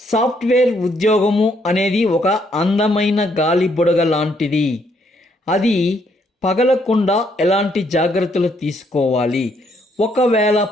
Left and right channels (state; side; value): normal; both; correlation 0.71